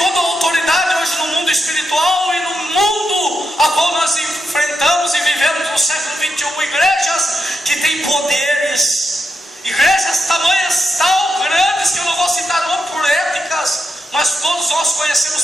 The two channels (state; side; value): normal; both; correlation 0.86